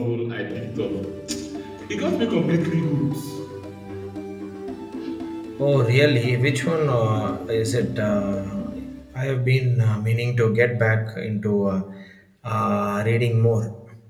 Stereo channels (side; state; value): both; identical; correlation 1.00